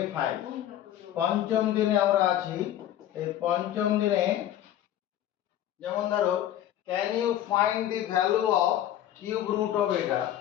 5। পঞ্চম দিনে আমরা আছি। এই পঞ্চম দিনে যেমন ধরো, can you find the value of cube root of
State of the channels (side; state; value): right; quieter; 11.9 dB